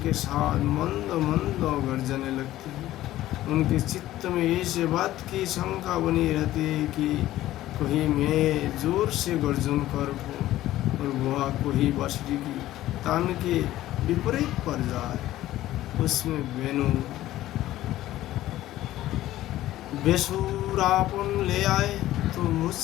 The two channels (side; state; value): right; quieter; 14.7 dB